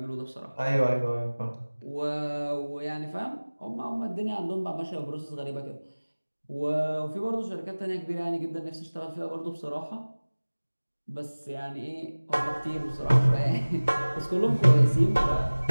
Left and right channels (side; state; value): both; inverted; correlation -1.00